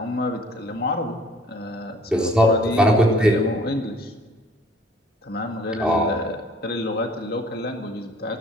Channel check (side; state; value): both; normal; correlation 0.55